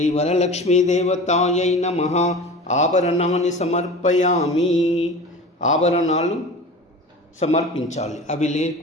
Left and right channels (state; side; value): normal; both; correlation 0.35